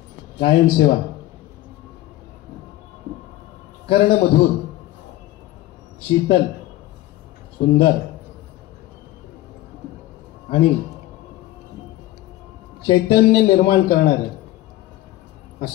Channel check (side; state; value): right; quieter; 16.0 dB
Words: गायन सेवा कर्णमधुर शीतल सुंदर आणि चैतन्य निर्माण करणारे